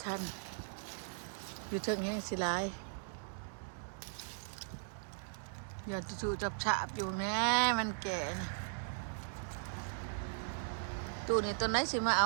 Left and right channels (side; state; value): left; silent; digital silence